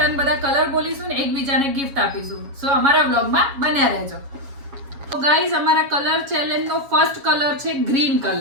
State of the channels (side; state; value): left; late; 7.2 ms